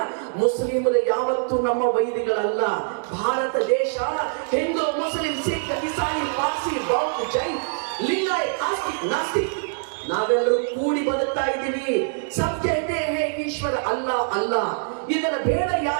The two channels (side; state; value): left; silent; digital silence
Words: ಮುಸ್ಲಿಮರು ಯಾವತ್ತೂ ನಮ್ಮ ವೈರಿಗಳಲ್ಲ. ಭಾರತ ದೇಶ ಹಿಂದೂ, ಮುಸ್ಲಿಂ, ಸಿಖ್, ಇಸಾಯಿ, ಪಾರ್ಸಿ, ಬೌದ್ಧ, ಜೈನ್, ಲಿಂಗಾಯತ್, ಆಸ್ತಿಕ್, ನಾಸ್ತಿಕ್ ನಾವೆಲ್ಲರೂ ಕೂಡಿ ಬದುಕ್ತಾ ಇದ್ದೀವಿ. ಸತ್ಯ ಇದೆ, ಹೇ ಈಶ್ವರ ಅಲ್ಲ ಅಲ್ಲ, ಇದರ ಬೇಡ